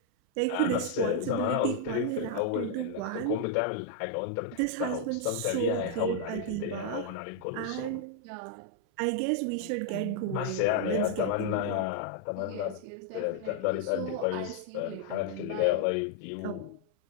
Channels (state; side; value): different; both; correlation 0.00